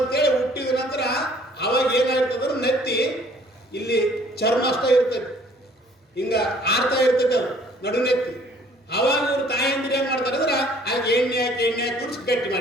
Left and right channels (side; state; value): both; normal; correlation 0.57